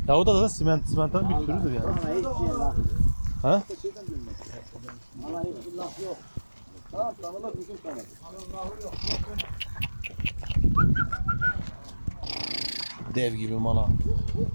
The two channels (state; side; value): inverted; both; correlation -1.00